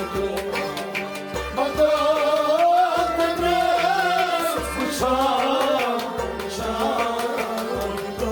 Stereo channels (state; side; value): identical; both; correlation 1.00